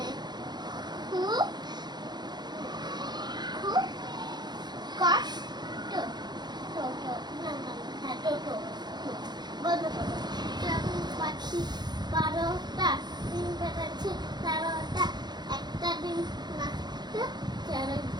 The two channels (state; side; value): late; left; 0.21 ms